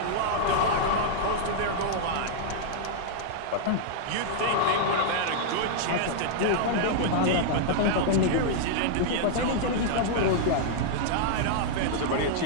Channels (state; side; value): different; both; correlation -0.01